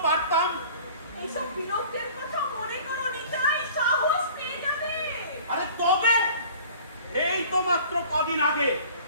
পারতাম। এইসব বিরোধের কথা মনে করো নিতাই, সাহস পেয়ে যাবে। আরে তবে এই তো মাত্র কদিন আগে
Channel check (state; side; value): inverted; both; correlation -0.46